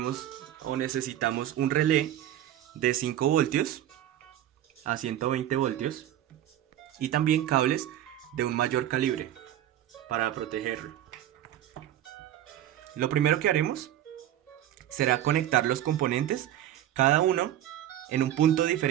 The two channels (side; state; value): left; quieter; 12.1 dB